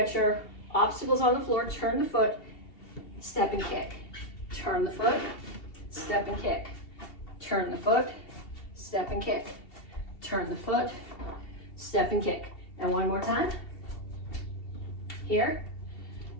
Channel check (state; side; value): late; right; 2.7 ms